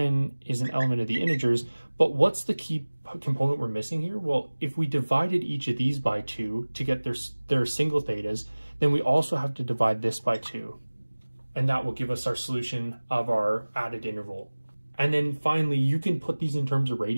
is an element of the integers. But what's the key component we're missing here? Well, if we divided each of these by 2 to get their single thetas, then we also have to divide this by 2. And that will give us our solution of our added interval. And then finally, you can put these in terms of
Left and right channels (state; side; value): inverted; both; correlation -1.00